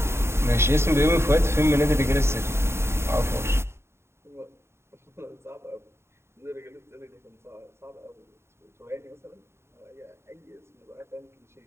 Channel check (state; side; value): late; left; 0.12 ms